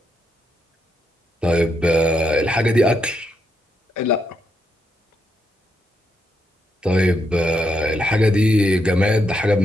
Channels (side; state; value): both; normal; correlation 0.80